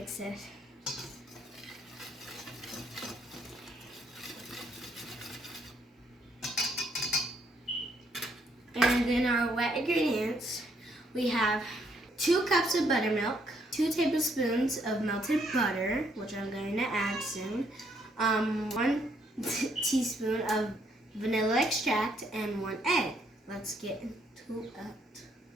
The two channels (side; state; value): both; normal; correlation 0.71